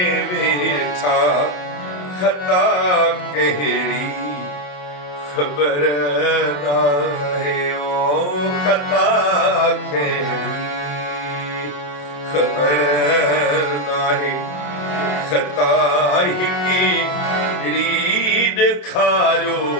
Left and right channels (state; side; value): late; right; 27 ms